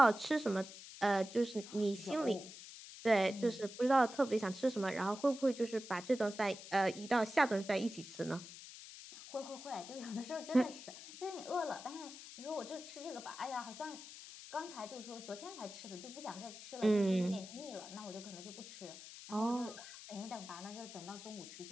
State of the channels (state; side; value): noise; left; hiss, 14 dB below the sound